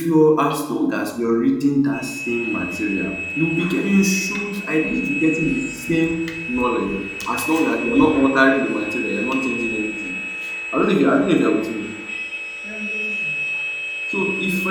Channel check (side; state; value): both; identical; correlation 1.00